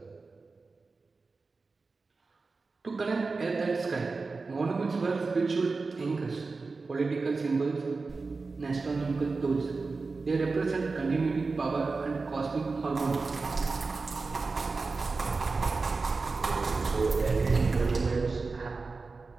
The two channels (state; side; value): quieter; left; 4.1 dB